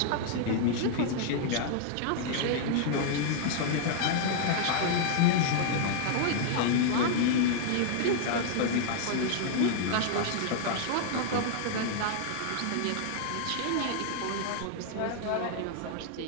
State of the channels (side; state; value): both; different; correlation -0.01